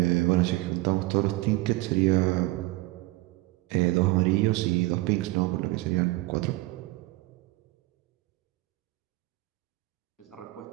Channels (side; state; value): left; quieter; 20.7 dB